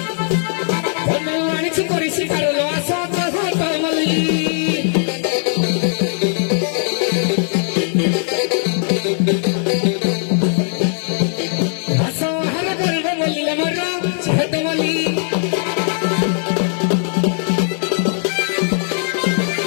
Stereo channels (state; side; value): silent; right; 67 dB below the other